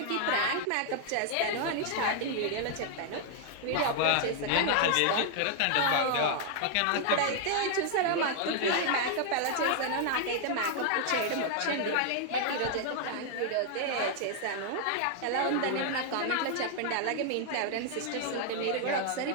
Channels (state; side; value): different; both; correlation 0.00